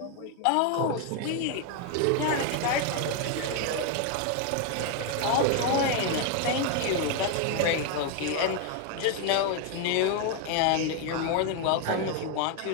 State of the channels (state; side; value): different; both; correlation 0.01